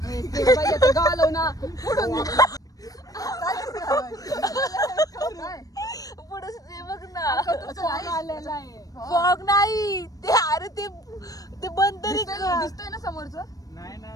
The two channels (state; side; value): late; right; 0.18 ms